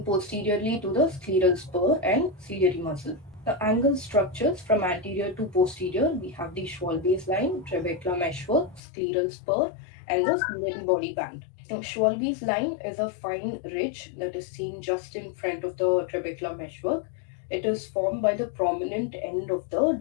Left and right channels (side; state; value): right; drops out; at 8.8 s